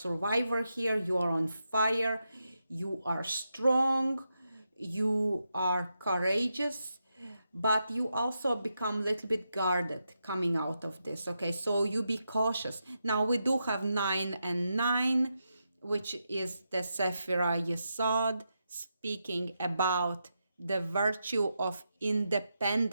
here. You are on fire. You are strong. You are courageous, but you also become a little bit guarded coming out of this. Okay, so you be cautious. Now we do have 9 and 9, which is the Sephira Yesod, speaking about the virtue of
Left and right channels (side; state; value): both; inverted; correlation -0.85